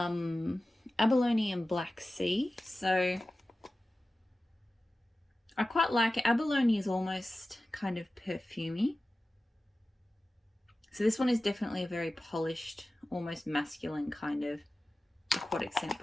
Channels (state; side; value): normal; both; correlation 0.95